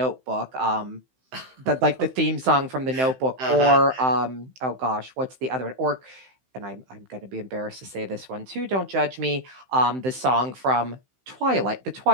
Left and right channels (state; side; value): late; left; 15 ms